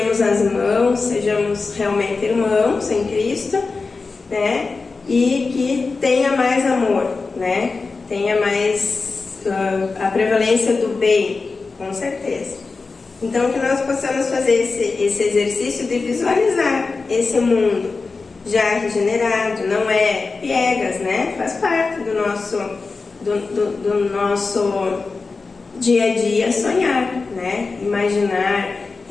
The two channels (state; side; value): quieter; right; 4.2 dB